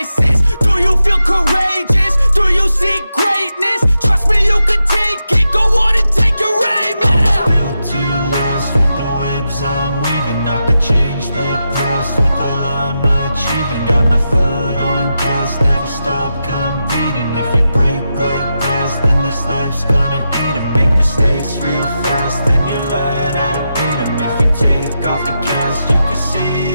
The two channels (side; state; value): both; inverted; correlation -0.88